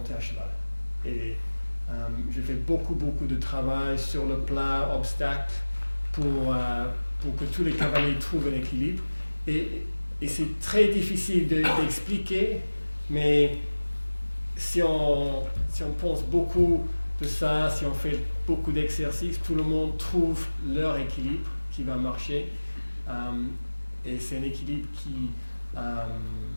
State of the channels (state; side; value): inverted; both; correlation -1.00